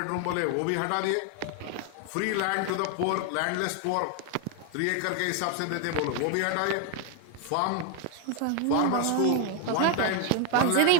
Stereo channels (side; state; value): both; different; correlation 0.01